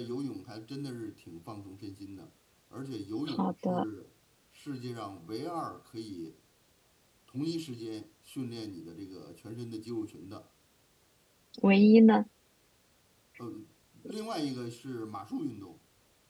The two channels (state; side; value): identical; both; correlation 1.00